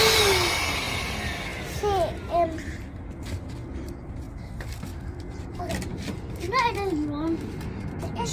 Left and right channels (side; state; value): both; identical; correlation 1.00